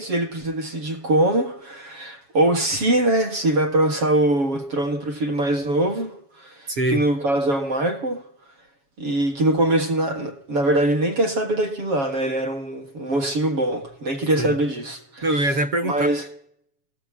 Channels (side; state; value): left; late; 7.2 ms